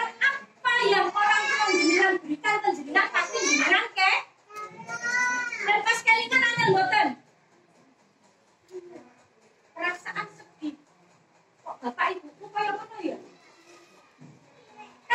apa yang orang tua jenengan berikan ke jenengan pasti jenengan ke. Dan pas kelingan ada boten. Perasaan sedih. Kok bapak ibuku kayak mana ya?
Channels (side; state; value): both; identical; correlation 1.00